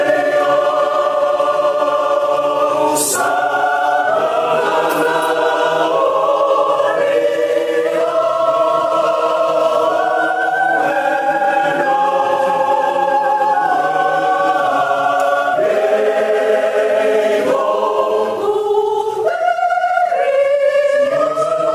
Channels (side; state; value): both; identical; correlation 1.00